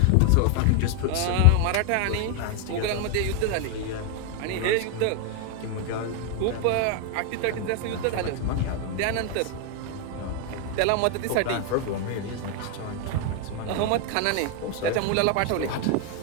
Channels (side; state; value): both; different; correlation 0.01